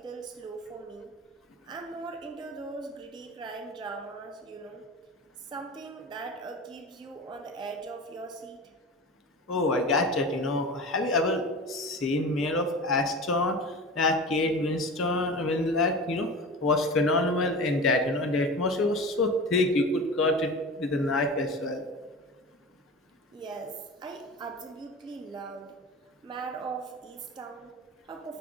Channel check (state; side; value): normal; both; correlation 0.32